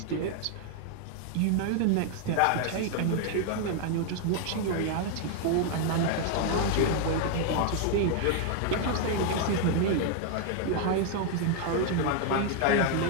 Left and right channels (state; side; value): different; both; correlation 0.00